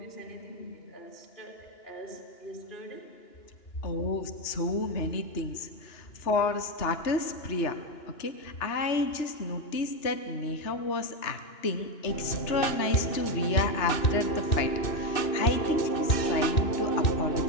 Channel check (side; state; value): right; late; 2.9 ms